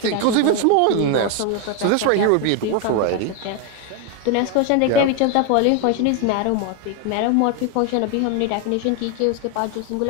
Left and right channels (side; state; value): both; different; correlation 0.01